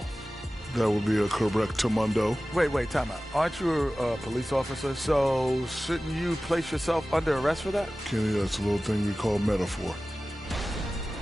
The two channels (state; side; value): normal; both; correlation 0.96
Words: That would be a correctamundo. Wait, time out. Aren't you a police officer? So shouldn't you place yourself under arrest for that? Kenny, that's a little thing we call metaphor.